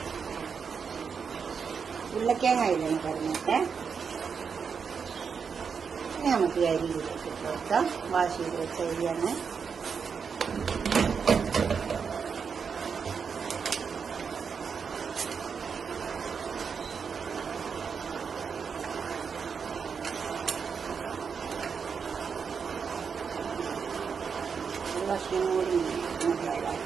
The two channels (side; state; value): left; quieter; 6.1 dB